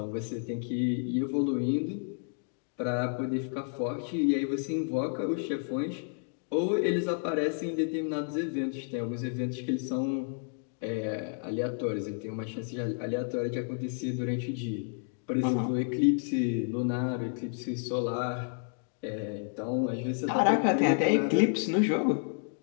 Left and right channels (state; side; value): silent; right; 57 dB below the other